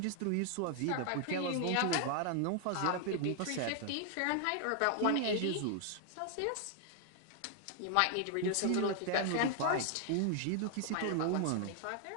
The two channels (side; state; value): both; different; correlation 0.00